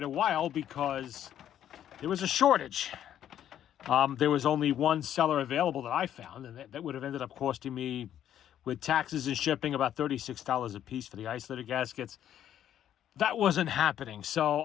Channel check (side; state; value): right; quieter; 10.7 dB